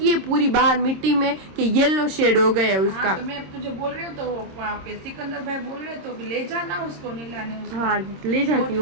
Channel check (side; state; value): left; late; 26 ms